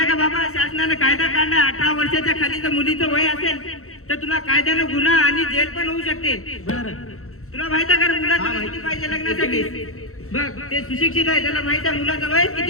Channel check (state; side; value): late; right; 0.63 ms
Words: का बाबा शासनाने कायदा काढलाय 18 वर्षाच्या खाली जर मुलीचं वय असेल तर तुला कायद्याने गुन्हा आणि जेल पण होऊ शकते तुला माहित आहे का मुलाचं वय किती पाहिजे लग्नासाठी बघ ते सुशिक्षित आहे त्याला माहित आहे मुलाचं वय